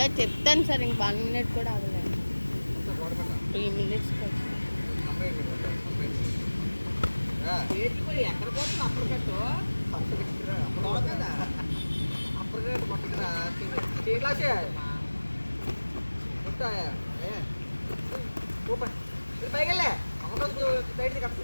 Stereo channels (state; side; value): inverted; both; correlation -1.00